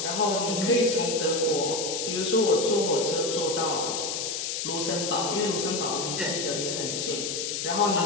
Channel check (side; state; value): left; noise; hiss, 3 dB below the sound